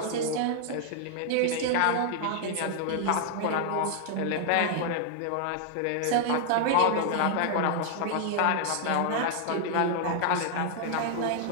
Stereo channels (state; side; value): different; both; correlation -0.01